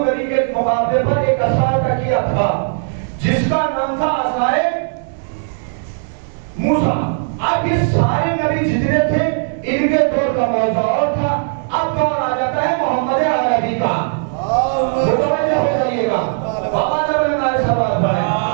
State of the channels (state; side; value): silent; left; digital silence